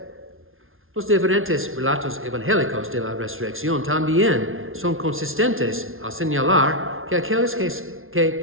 Los diferentes relatos evangélicos de la resurrección también son consistentes al señalar que aquellos que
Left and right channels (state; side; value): late; left; 0.60 ms